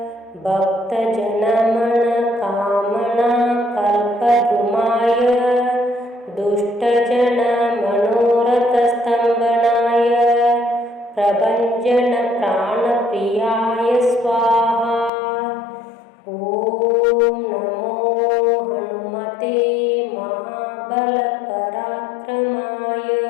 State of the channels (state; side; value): drops out; right; at 15.1 s